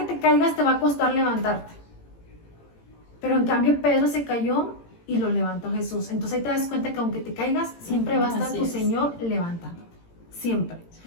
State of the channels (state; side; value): late; right; 18 ms